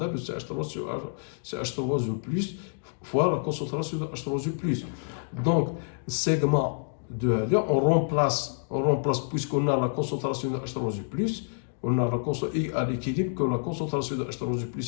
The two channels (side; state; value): right; silent; digital silence